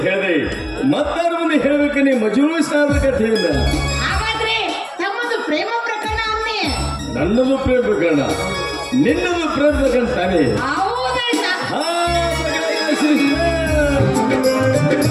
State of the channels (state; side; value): identical; both; correlation 1.00